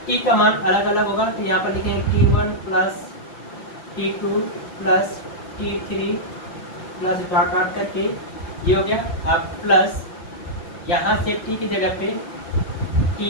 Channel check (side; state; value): right; late; 5.7 ms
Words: T का मान अलग अलग होगा। तो यहाँ पर लिखेंगे T1 plus T2 plus T3 plus dot dot करके ये हो गया। अब प्लस यहाँ से T की जगह पे